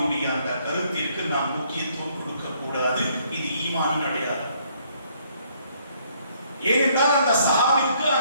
அந்த கருத்திற்கு நாம் முக்கியத்துவம் கொடுக்க கூடாது. இது ஈமானின் அடையாளம். ஏனென்றால் அந்த சஹாபிக்கு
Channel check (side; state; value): both; inverted; correlation -0.67